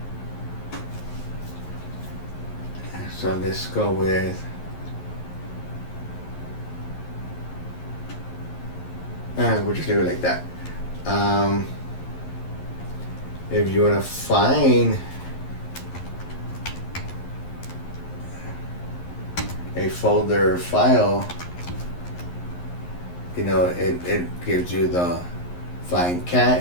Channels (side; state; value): right; late; 11 ms